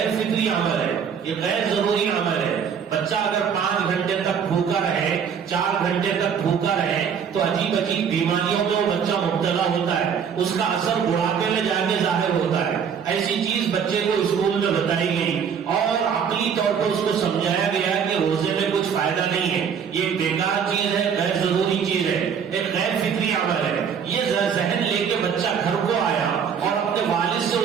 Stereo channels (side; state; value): left; quieter; 7.2 dB